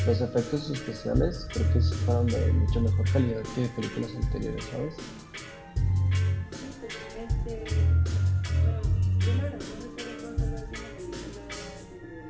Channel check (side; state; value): both; identical; correlation 1.00